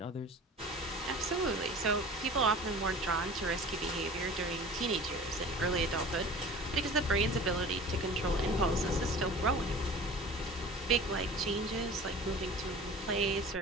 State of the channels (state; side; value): normal; both; correlation 0.41